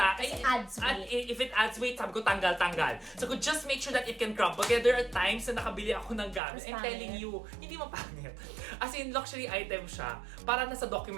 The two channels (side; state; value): left; drops out; at 6.4 s